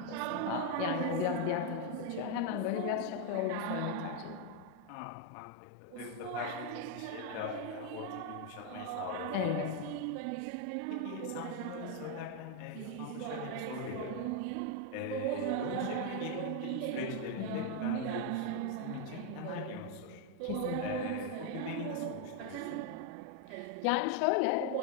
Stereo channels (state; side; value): different; both; correlation 0.01